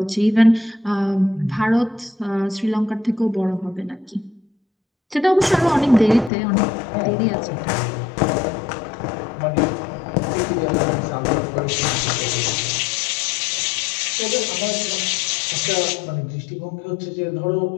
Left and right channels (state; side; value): drops out; right; at 6.3 s